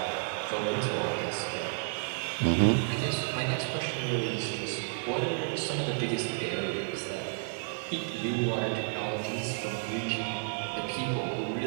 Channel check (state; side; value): silent; left; digital silence